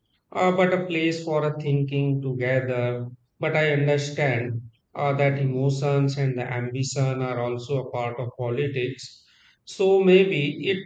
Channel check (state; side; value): identical; both; correlation 1.00